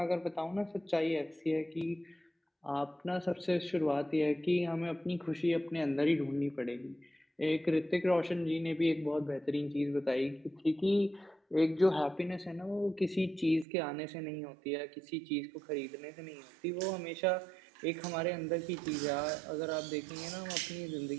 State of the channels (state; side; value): drops out; left; at 13.7 s